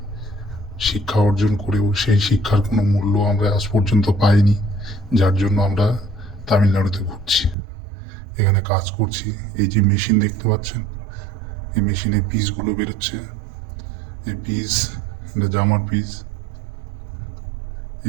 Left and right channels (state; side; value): drops out; left; at 7.6 s